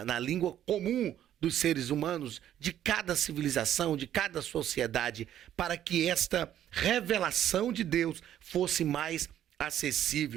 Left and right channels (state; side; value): quieter; left; 11.2 dB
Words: língua comum dos seres humanos, de cada civilização, de cada sociedade, para que esta revelação de Deus fosse mais